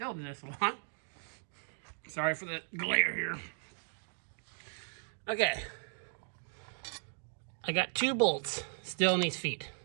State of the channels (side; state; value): left; silent; digital silence